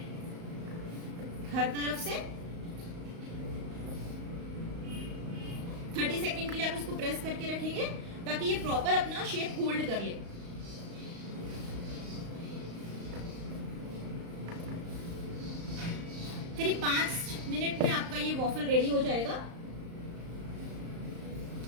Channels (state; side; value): late; left; 35 ms